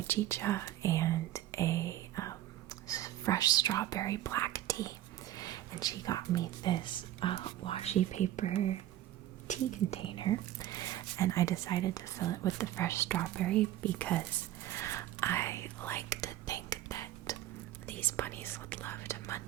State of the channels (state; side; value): quieter; left; 13.4 dB